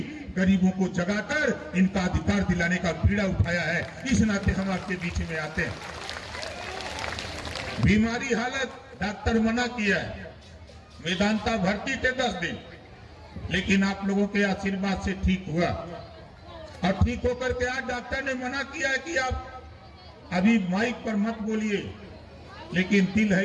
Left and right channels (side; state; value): both; identical; correlation 1.00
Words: गरीबों को जगाकर इनका अधिकार दिलाने का बीड़ा उठाया है। इस नाते हम आपके बीच में आते हैं। बीमारी हालत डॉक्टर मना किया है, वेदांता भर्ती थे 10 दिन, लेकिन आप लोगों के आशीर्वाद से ठीक हुआ। और ठीक होकर के आज डॉक्टर ने मना किया है कि आप अभी माइक पर मत बोलिए, लेकिन दिल